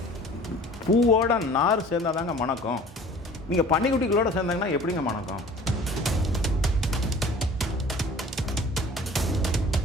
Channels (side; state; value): both; normal; correlation 0.47